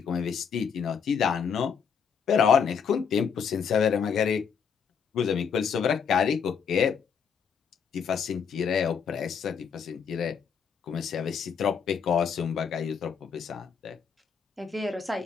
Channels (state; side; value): quieter; right; 6.7 dB